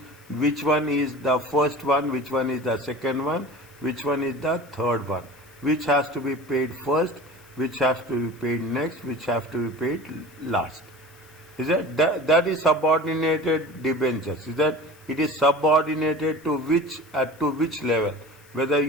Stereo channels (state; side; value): noise; left; hiss, 27 dB below the sound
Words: the first one, which one is the second one, which one is the third one, which has to be paid first, which has to be paid next, which has to be paid last. Is that is subordinated debentures? Is that it is subordinated to which level? Whether